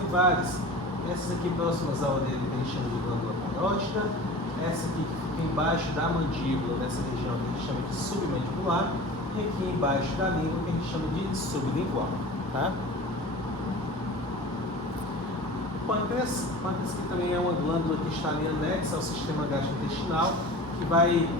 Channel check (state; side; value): normal; both; correlation 0.37